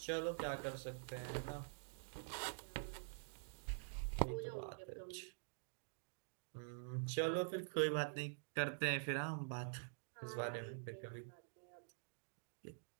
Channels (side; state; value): left; silent; digital silence